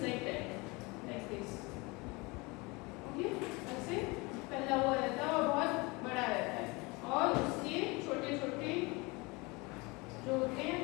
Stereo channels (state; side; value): quieter; right; 25.8 dB